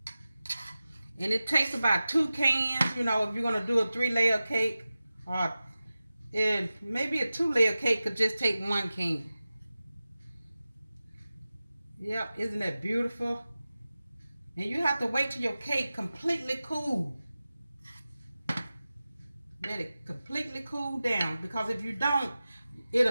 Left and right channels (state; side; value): inverted; both; correlation -0.95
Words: And it takes about 2 cans, you know, if you're going to do a 3-layer cake, or maybe a 2-layer cake could just take 1 can. Yep, isn't that beautiful? And you have to wait till your cake completely cool. Let it completely cool down, because if you don't,